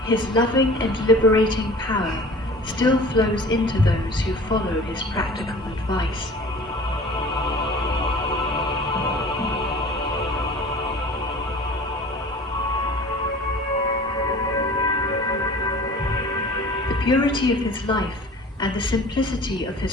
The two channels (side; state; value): both; normal; correlation 0.43